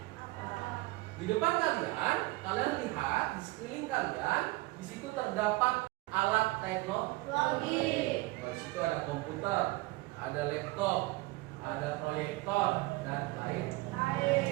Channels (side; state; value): left; quieter; 21.4 dB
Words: apa. Di depan kalian lihat di sekeliling kalian, di situ terdapat alat teknologi. Di situ ada komputer, ada laptop, ada proyektor dan lain.